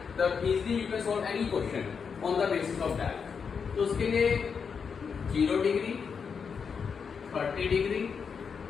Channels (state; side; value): quieter; right; 6.1 dB